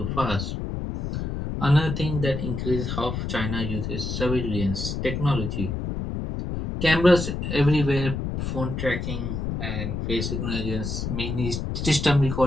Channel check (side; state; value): left; noise; rumble, 3 dB below the sound